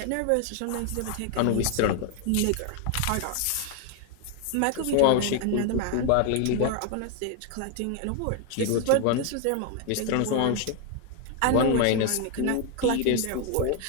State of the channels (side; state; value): both; different; correlation 0.00